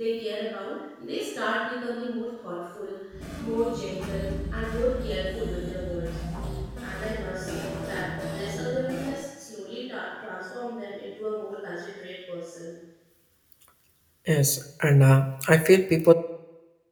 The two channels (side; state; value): both; identical; correlation 1.00